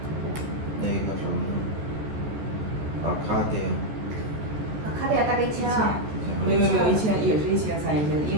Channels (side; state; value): left; late; 14 ms